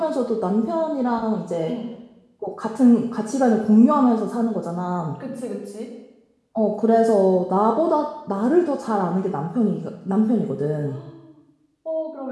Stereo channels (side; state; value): both; identical; correlation 1.00